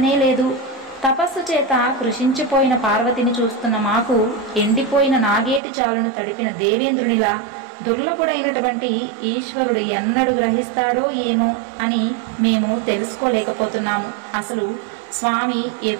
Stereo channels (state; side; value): drops out; left; at 5.6 s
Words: లేదు. తపస్సు చేత కృషించిపోయిన పార్వతిని చూస్తున్న మాకు ఎండిపోయిన నాగేటి చాలును తడిపిన దేవేంద్రునిలా దుర్లభుడైనటువంటి ఈశ్వరుడు ఎన్నడు గ్రహిస్తాడో ఏమో అని మేము తెలుసుకోలేకపోతున్నాము. అసలు స్వామి